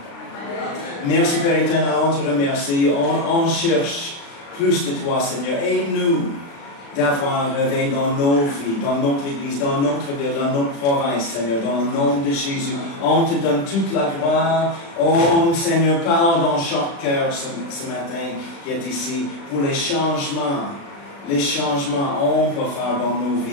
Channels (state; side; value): late; right; 36 ms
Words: Merci, Père éternel, on te remercie. On cherche plus de toi, Seigneur. Aide-nous d'avoir un réveil dans nos vies, dans notre Église, dans notre ville, dans notre province, Seigneur, dans le nom de Jésus. On te donne toute la gloire. Oh, Seigneur, parle dans chaque cœur ce matin qui est ici pour les changements. Les changements on peut faire dans nos